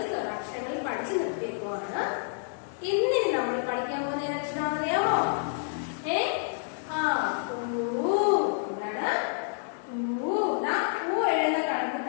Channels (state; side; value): silent; right; digital silence